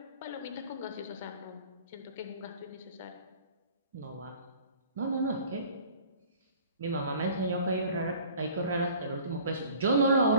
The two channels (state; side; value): inverted; both; correlation -0.48